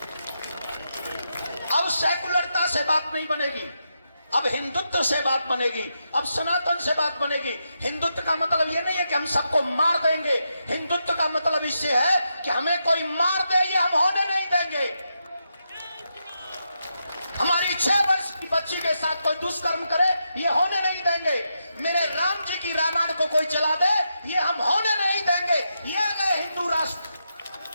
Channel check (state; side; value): inverted; both; correlation -0.84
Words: अब सेकुलरता से बात नहीं बनेगी, अब हिंदुत्व से बात बनेगी, अब सनातन से बात बनेगी। हिंदुत्व का मतलब ये नहीं है कि हम सबको मार देंगे। हिंदुत्व का मतलब इससे है कि हमें कोई मार दे, ये हम होने नहीं देंगे। हमारी 6 वर्ष की बच्ची के साथ कोई दुष्कर्म करे, ये होने नहीं देंगे। मेरे राम जी की रामायण को कोई जला दे, ये हम होने नहीं देंगे। ये है हिंदू राष्ट्र,